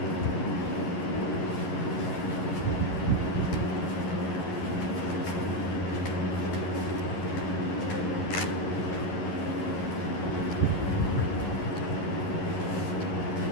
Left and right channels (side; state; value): right; late; 11 ms